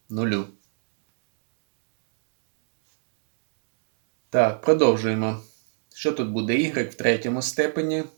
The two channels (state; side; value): silent; left; digital silence